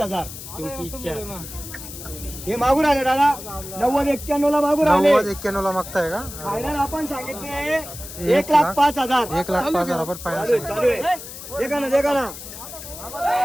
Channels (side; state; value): left; noise; hiss, 12 dB below the sound